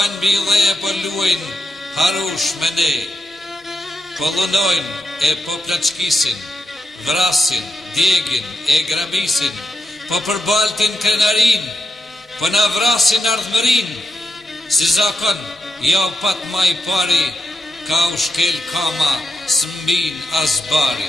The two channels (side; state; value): both; normal; correlation 0.85